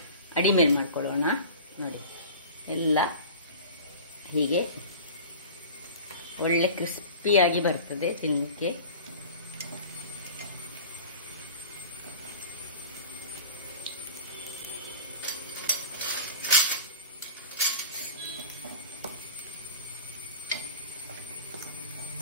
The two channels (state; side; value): inverted; both; correlation -0.38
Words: ಅಡಿಮೇಲ್ ಮಾಡ್ಕೊಳ್ಳೋಣ. ನೋಡಿ, ಎಲ್ಲ ಹೀಗೆ ಒಳ್ಳೆ ಕ್ರಿಸ್ಪಿಯಾಗಿ ಬರ್ತದೆ ತಿನ್ನಲಿಕ್ಕೆ.